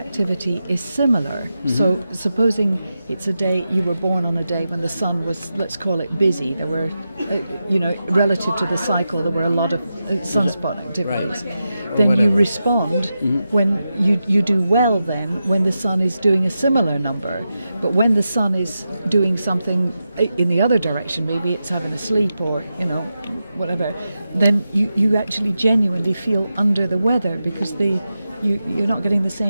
is similar, so supposing it's a day, you were born on a day when the sun was, let's call it busy, there were, relative to the cycle, there were a lot of sunspot activities. Right. Then you whatever. respond when you do well then when the sun is doing a similar number. But when the sun is doing something in the other direction, maybe it's having a sleep or, whatever, then you actually genuinely feel under the weather because you're not getting the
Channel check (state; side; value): inverted; both; correlation -0.90